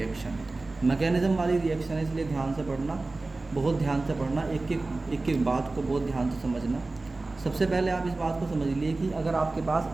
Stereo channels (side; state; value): left; quieter; 3.3 dB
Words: Mechanism वाली रिएक्शन है, इसलिए ध्यान से पढ़ना, बहुत ध्यान से पढ़ना, एक एक बात को बहुत ध्यान से समझना। सबसे पहले आप इस बात को समझ लिए कि अगर आपके